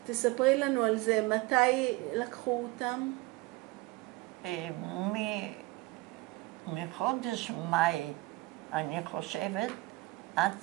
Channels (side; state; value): left; quieter; 21.1 dB